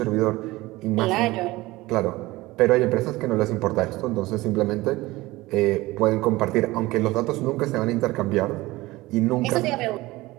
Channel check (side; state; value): left; quieter; 19.7 dB